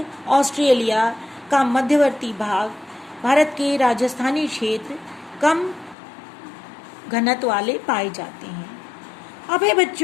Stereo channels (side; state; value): right; drops out; at 6.0 s